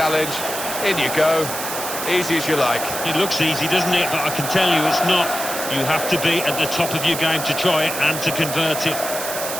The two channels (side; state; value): right; noise; hiss, 6 dB below the sound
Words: In you go. Easy as you like. It looks easy, doesn't it? But I can tell you it's not. You have to be at the top of your game to try it and to convert it.